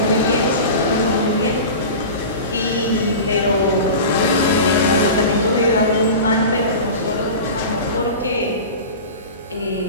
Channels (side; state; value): both; inverted; correlation -0.32